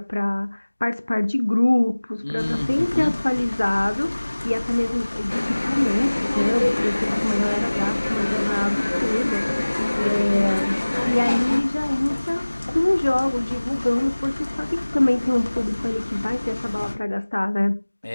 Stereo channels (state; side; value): inverted; both; correlation -1.00